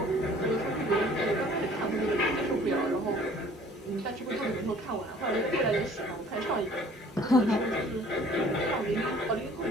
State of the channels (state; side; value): normal; both; correlation 0.53